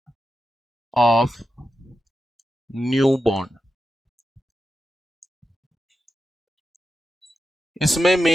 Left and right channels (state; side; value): normal; both; correlation 0.90